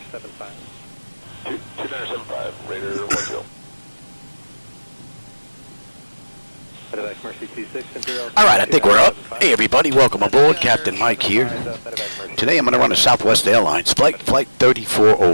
2975, Raider 10. Medevac Mercy 26, Imperial. Alright, I think we're up. Hey everybody, welcome aboard. Captain Mike here. Today I'm going to run a Southwest Airlines flight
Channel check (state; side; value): inverted; both; correlation -1.00